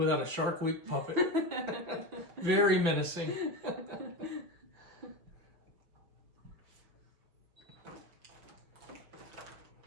a Shark Week puppet? Very menacing.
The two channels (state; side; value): late; left; 6.0 ms